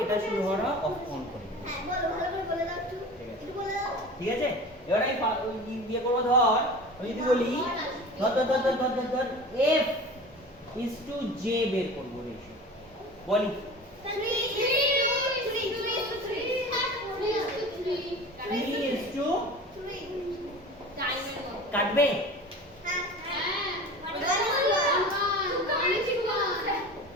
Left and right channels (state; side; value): normal; both; correlation 0.36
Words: এটা শুরু হওয়ার অফ অন করে। ঠিক আছে, এবার আমি ইয়ে করবো, ধর আমি যদি বলি ধর এফ ইজ টু জে বের করবো রেশিও, বলি 3:3 কাটবে।